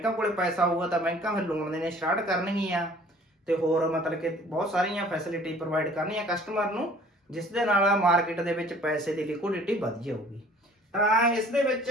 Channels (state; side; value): normal; both; correlation 0.52